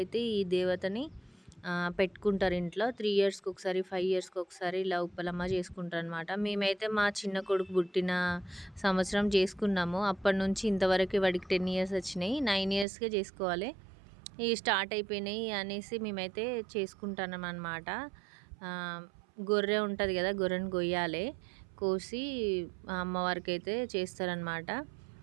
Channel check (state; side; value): drops out; left; at 12.9 s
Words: ఈ దేవతని పెట్టుకుంటారు ఇంట్లో. 3 ఇయర్స్కి ఒకసారి, 5 ఇయర్స్కి ఒకసారి ఇలా ఉప్పలమ్మ చేసుకుంటారు అనమాట. మేమైతే మా చిన్న కొడుకు పుట్టిన సంవత్సరం చేసుకున్నాము. అప్పటి నుంచి ఇంతవరకు వాడికి 10 ఇయర్స్ వచ్చినాయి. 9 ఇయర్స్కే చేసుకోవాలి, ఇవి స్టార్ట్ అయిపోయినాయి అనేసి మేమైతే చేసుకుంటున్నాం అనమాట. గొర్రె ఉంటుంది కదా, గొర్రెను కొయ్యాలి, కోసి అమ్మవారికి అయితే చేస్తారనమాట.